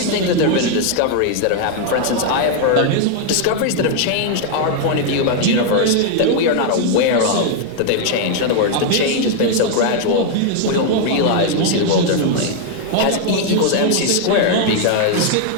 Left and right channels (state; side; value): different; both; correlation 0.00